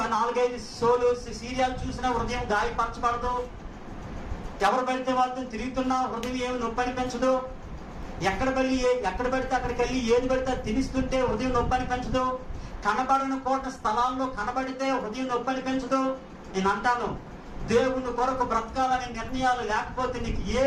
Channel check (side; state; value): both; identical; correlation 1.00